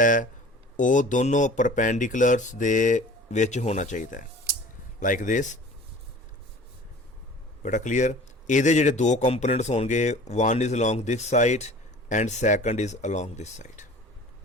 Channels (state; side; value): normal; both; correlation 0.44